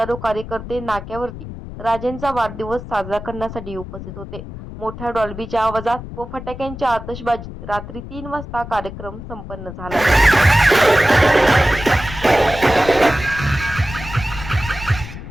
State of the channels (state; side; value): noise; left; rumble, 11 dB below the sound